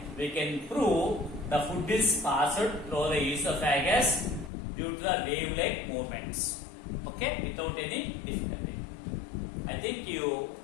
we can prove the food is passed through the esophagus due to the wave-like movements. Okay, without any difficulty. I think you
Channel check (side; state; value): right; drops out; at 4.5 s